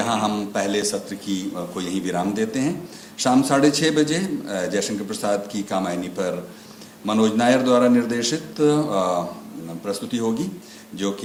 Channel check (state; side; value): identical; both; correlation 1.00